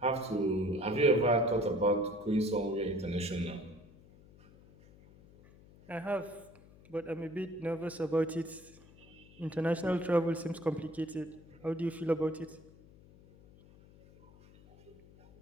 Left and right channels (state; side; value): noise; left; hum, 23 dB below the sound